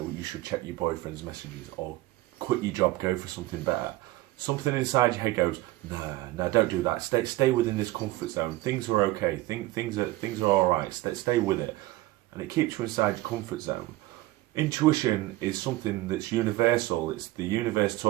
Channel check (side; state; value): left; quieter; 18.0 dB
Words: you should check your boyfriend's messages or quit your job, go for something better, something inside your head goes, nah, don't do that. Stay within this comfort zone. Things are okay. Things are all right. Stay with it, and it keeps you inside your comfort zone. Intuition is something that's universal. It's the universe